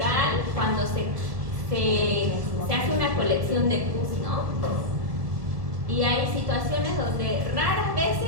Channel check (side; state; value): left; late; 1.6 ms